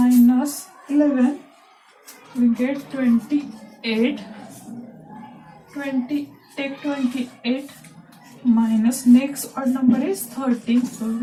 11, we get 28. Take 28 minus next odd number is 13, so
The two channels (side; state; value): both; identical; correlation 1.00